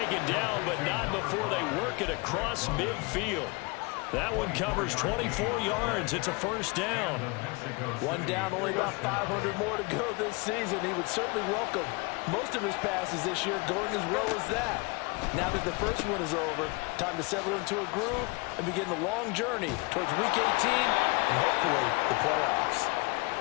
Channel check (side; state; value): right; quieter; 28.1 dB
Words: down, but not before they work it across midfield. That one covers 24 yards. It's a first down. One down, only about 500 more to go this season. He would certainly welcome most of his passes this year going as well as that. Now that the first one is over, time to settle into a groove and begin the long journey towards Week 18 and hopefully the playoffs.